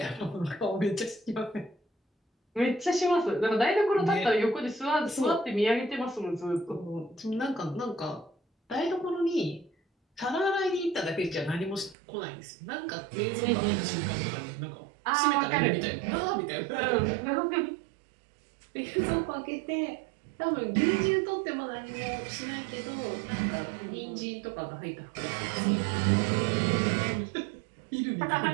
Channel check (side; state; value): left; drops out; at 12.0 s